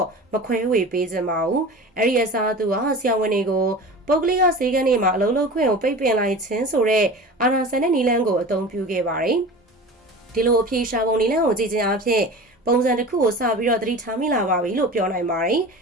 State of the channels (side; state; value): both; normal; correlation 0.35